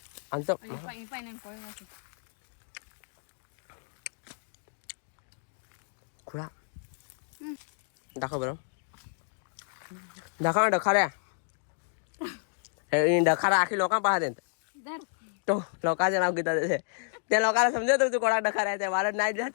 आमचं. खुळा दाखव बरं, दाखव ना डखाऱ्या. डखारा आखी लोकांना पाहत तो लोकांचे नाव घेतात त्या लोकांना समजत तू कोणा डखारा आहे. मला नाही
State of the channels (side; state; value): right; silent; digital silence